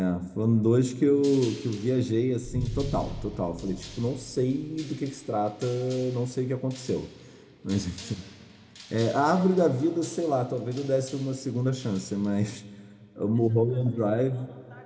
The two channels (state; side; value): identical; both; correlation 1.00